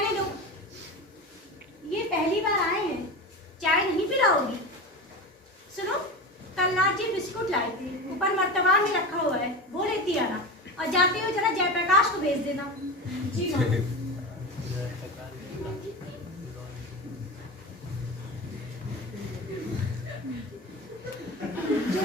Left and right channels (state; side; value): normal; both; correlation 0.26